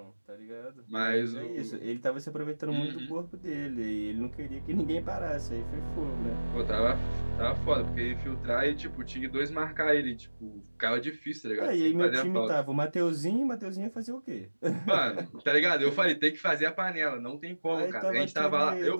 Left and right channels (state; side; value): inverted; both; correlation -1.00